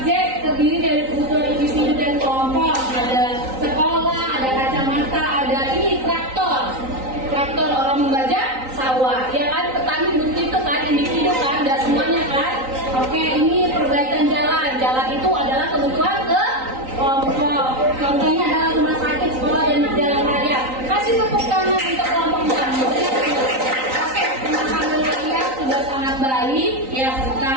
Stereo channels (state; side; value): late; left; 3.9 ms